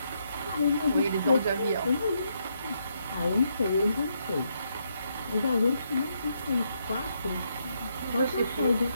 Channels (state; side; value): inverted; both; correlation -0.78